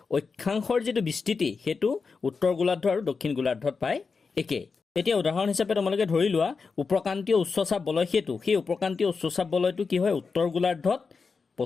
অক্ষাংশৰ যিটো বিস্তৃতি সেইটো উত্তৰ গোলাৰ্ধ আৰু দক্ষিণ গোলাৰ্ধত প্ৰায় একেই। এতিয়া উদাহৰণ হিচাপে তোমালোকে ধৰি লোৱা উপক্ৰান্তীয় উচ্চচাপ বলয় সেইটো, সেই উপক্ৰান্তীয় উচ্চচাপ বলয়টো কি হয়, উত্তৰ গোলাৰ্ধত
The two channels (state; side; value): quieter; right; 4.9 dB